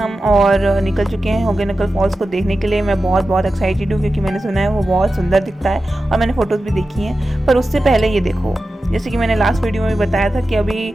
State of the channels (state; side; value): normal; both; correlation 0.93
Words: और निकल चुके हैं होगे नकल फॉल्स को देखने के लिए। मैं बहुत बहुत एक्साइटेड हूँ क्योंकि मैंने सुना है वो बहुत सुंदर दिखता है और मैंने फ़ोटोज़ भी देखी हैं। पर उससे पहले ये देखो, जैसे कि मैंने लास्ट वीडियो में बताया था कि अभी